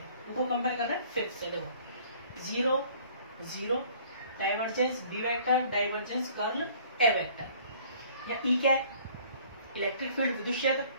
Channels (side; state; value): both; inverted; correlation -0.54